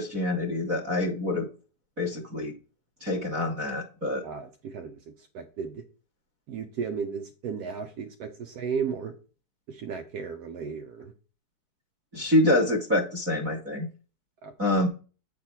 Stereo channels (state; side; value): late; left; 4.0 ms